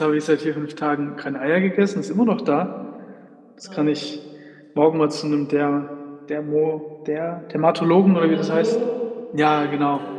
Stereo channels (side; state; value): both; identical; correlation 1.00